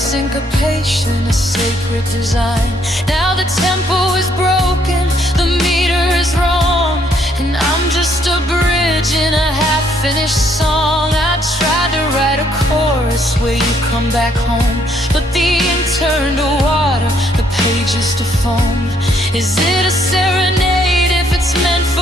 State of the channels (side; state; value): both; normal; correlation 0.69